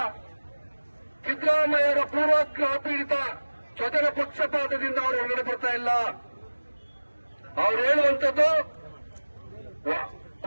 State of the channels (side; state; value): both; inverted; correlation -1.00